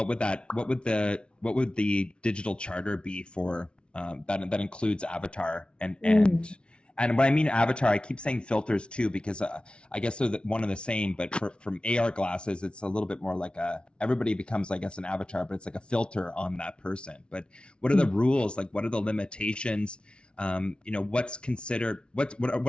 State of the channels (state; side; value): late; right; 0.057 ms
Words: would the digital charter be for that includes Avatar and when I mean Avatar, I keep saying filters too, because I guess they're one and the same, but from AR glasses, it's a little bit more like everybody becomes, I guess, an avatar, but it's like a filter on that person. But what are the rules? Like, what are the limitations? What's considered, what